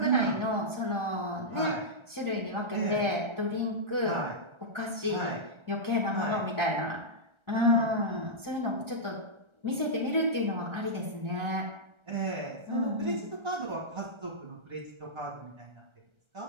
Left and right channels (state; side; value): late; left; 1.3 ms